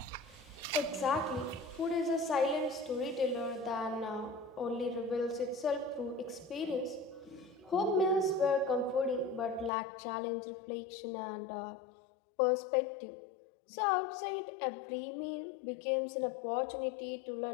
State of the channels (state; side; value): drops out; right; at 9.7 s